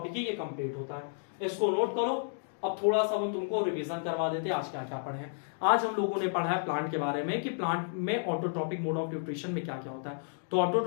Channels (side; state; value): right; silent; digital silence